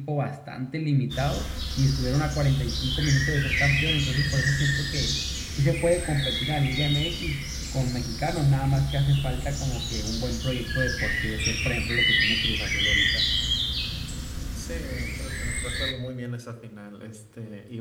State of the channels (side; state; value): both; identical; correlation 1.00